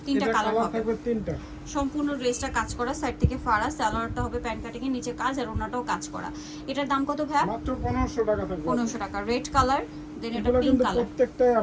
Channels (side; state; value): both; identical; correlation 1.00